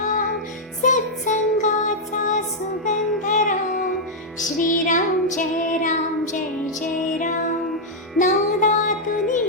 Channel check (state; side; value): normal; both; correlation -0.04